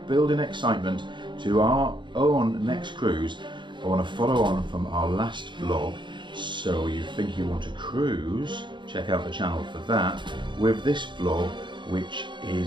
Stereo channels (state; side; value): late; left; 0.23 ms